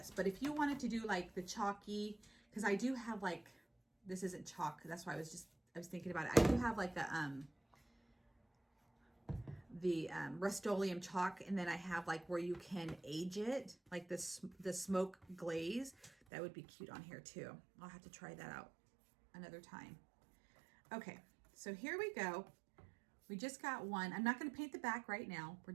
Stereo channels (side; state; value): left; drops out; at 16.1 s